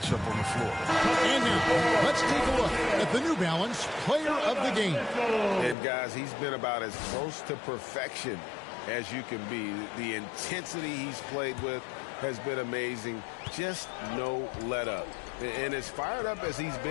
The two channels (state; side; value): drops out; right; at 5.8 s